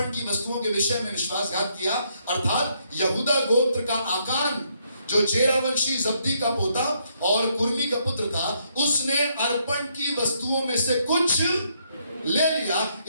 की वस्तुओं के विषय में विश्वासघात किया, अर्थात यहूदा गोत्र का आकान जो जेरा वंशी जब्दी का पोता और कुर्मी का पुत्र था, उसने अर्पण की वस्तुओं में से कुछ ले लिया।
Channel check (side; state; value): both; inverted; correlation -0.73